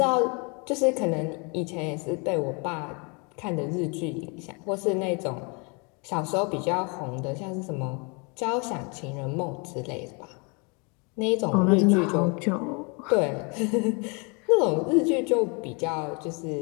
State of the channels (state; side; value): quieter; right; 32.3 dB